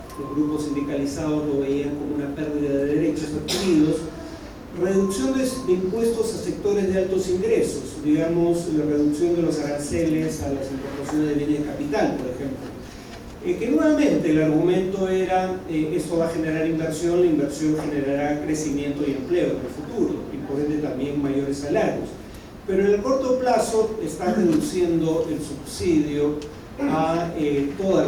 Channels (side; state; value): both; identical; correlation 1.00